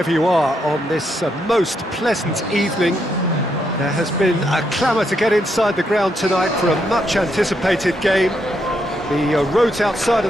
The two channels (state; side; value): normal; both; correlation 0.78